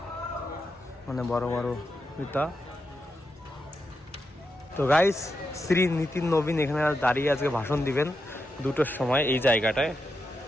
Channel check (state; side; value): normal; both; correlation 0.86